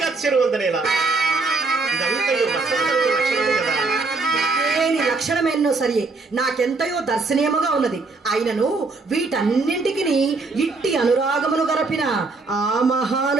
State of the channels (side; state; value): left; quieter; 3.8 dB